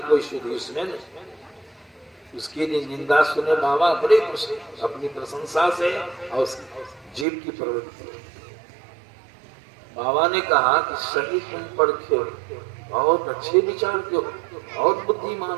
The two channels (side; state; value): left; drops out; at 7.2 s